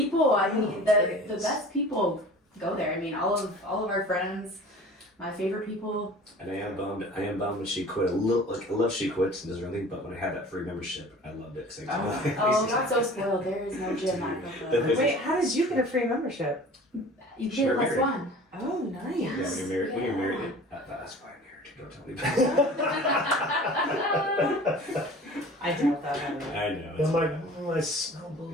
I mean, It the is. best people go there. I mean, all of our friends, my favorite people. And I am bummed when she quit. I love she quits and does her own thing, but when I had that free membership, I loved it. 'Cause I Oh, not so spoiled. There is no gym at Pro Club. Wait, how did you get a free membership? You Sure, get plus married. one. Oh, nice. Yeah, when you're married, Yeah. that's why I'm married. Don't tell me about I doubt that. it. I know. I'm like, I smell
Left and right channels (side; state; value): both; normal; correlation 0.43